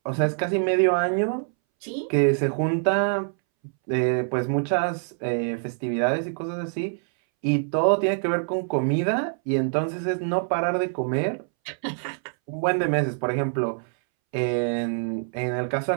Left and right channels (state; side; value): silent; left; 62 dB below the other